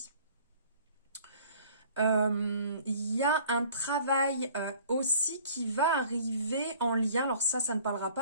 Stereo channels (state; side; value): inverted; both; correlation -0.52